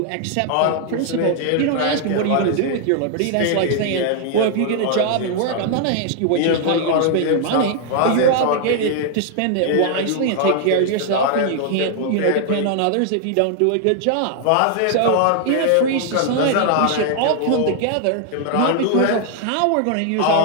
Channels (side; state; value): both; different; correlation 0.00